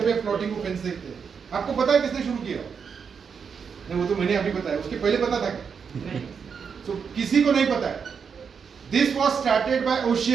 पे प्लॉटिंग को फेंस देखते हैं, आपको पता है किसने शुरू किया? नहीं, वो तो मैंने अभी बताया, उसके पहले पता था क्या? तो किसी को नहीं पता है। This was started by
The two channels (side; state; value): left; quieter; 6.3 dB